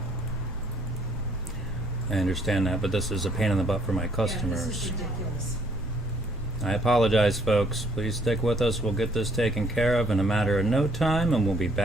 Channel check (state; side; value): normal; both; correlation 0.64